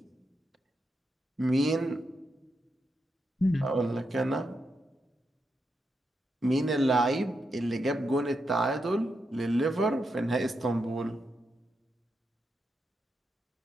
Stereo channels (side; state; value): both; normal; correlation 0.84